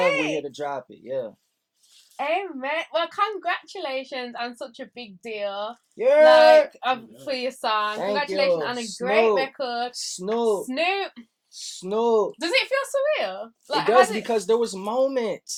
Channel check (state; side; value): identical; both; correlation 1.00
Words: here to drop it. Yeah. Amen. Well, congratulations on such a big deal. Yeah. For your song. Thank Congratulations you. on a Snoop. great record. Snoop. Does it feel surreal? It does because there was